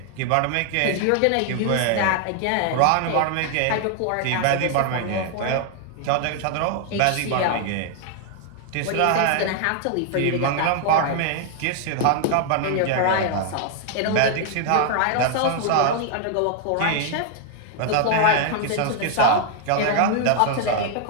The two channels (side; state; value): both; different; correlation 0.00